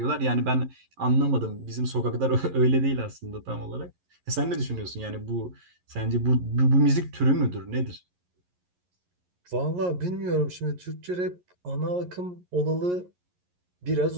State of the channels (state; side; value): late; left; 11 ms